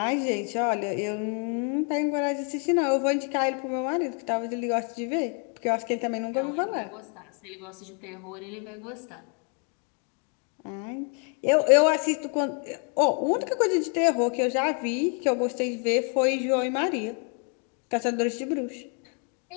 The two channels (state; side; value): quieter; right; 38.5 dB